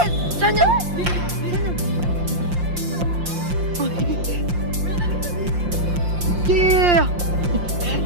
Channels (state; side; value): late; left; 5.7 ms